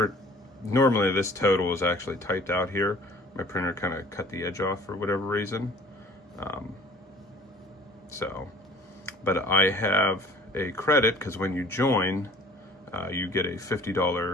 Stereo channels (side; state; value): both; normal; correlation 0.49